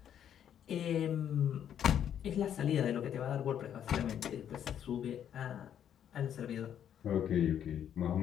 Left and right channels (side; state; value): right; quieter; 9.6 dB